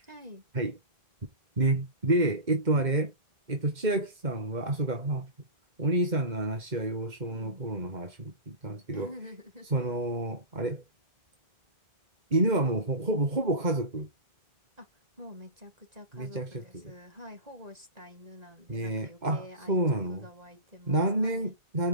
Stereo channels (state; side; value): late; left; 2.1 ms